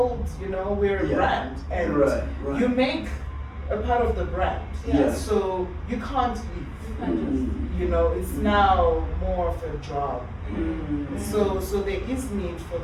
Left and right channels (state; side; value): identical; both; correlation 1.00